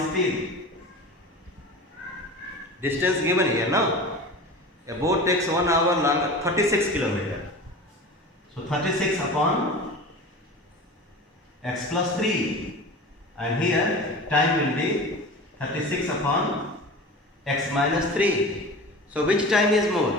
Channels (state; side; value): normal; both; correlation 0.34